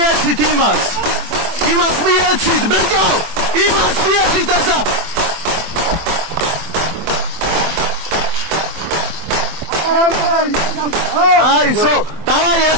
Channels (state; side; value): late; left; 24 ms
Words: იმას. იმას მიეცით, ბიჭო. იმას მიეცით ასა. აი, დავაი